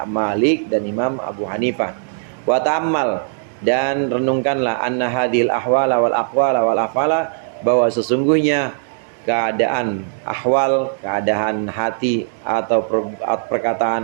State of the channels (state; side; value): silent; left; digital silence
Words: Malik, dan Imam Abu Hanifah. Wa ta'ammal, dan renungkanlah anna hadhil ahwala wal aqwala wal afala, bahwa sesungguhnya keadaan ahwal, keadaan hati atau